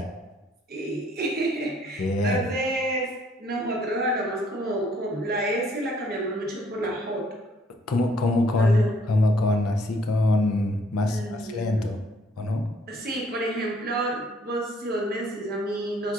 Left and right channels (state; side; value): normal; both; correlation 0.64